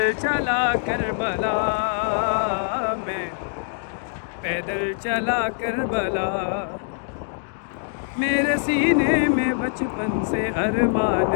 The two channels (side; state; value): right; silent; digital silence